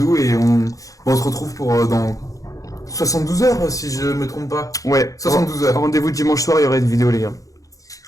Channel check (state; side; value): late; right; 0.16 ms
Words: et on se retrouve pour dans 72 heures si je me trompe pas. Ouais. 72 heures. Rendez-vous dimanche soir, il y aura une vidéo les gars.